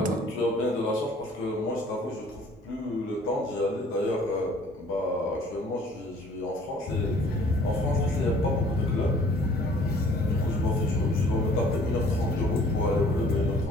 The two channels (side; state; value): both; normal; correlation 0.55